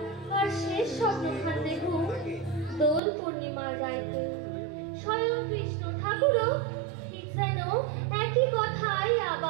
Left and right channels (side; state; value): left; drops out; at 3.0 s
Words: শেষ স্বপ্নখান দেখু দোল পূর্ণিমার রাইতে স্বয়ং কৃষ্ণ ঠাকুরও ঠিক যেন একই কথাই